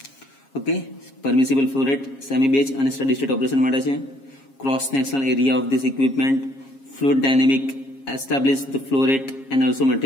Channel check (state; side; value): late; right; 7.4 ms